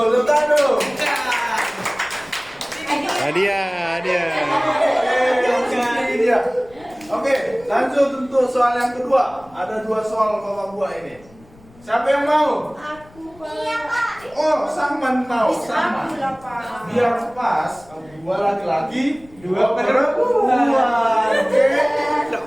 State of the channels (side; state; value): left; noise; rumble, 25 dB below the sound